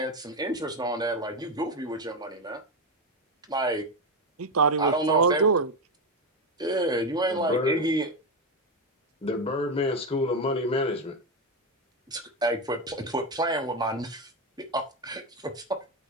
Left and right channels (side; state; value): both; normal; correlation 0.11